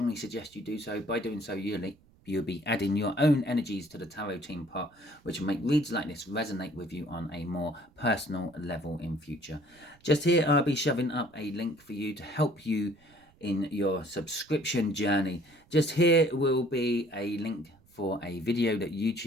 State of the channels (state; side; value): noise; right; rumble, 30 dB below the sound